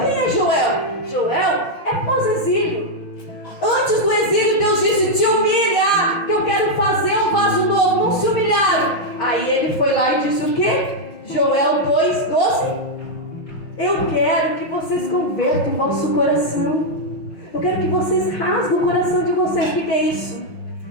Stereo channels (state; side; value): late; right; 5.9 ms